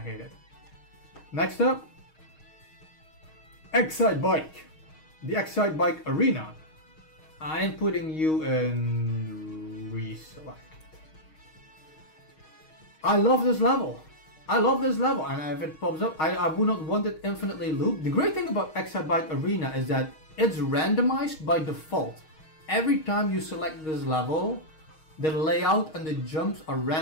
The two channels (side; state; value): right; late; 6.4 ms